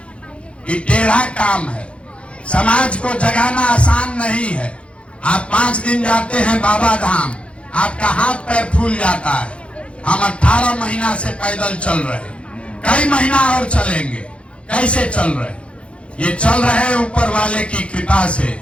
ये टेढ़ा काम है, समाज को जगाना आसान नहीं है। आप 5 दिन जाते हैं बाबा धाम, आपका हाथ पैर फूल जाता है। हम 18 महीना से पैदल चल रहे, कई महीना और चलेंगे। कैसे चल रहे? ये चल रहे हैं ऊपर वाले की कृपा से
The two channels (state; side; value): late; right; 0.060 ms